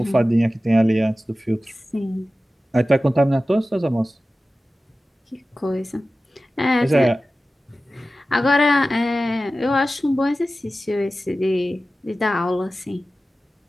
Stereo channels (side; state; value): both; normal; correlation 0.95